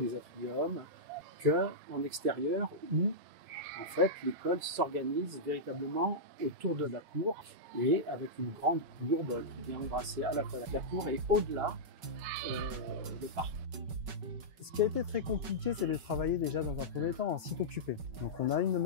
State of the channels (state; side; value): late; left; 5.3 ms